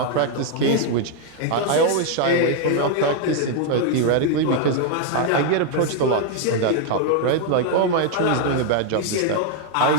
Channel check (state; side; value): different; both; correlation 0.00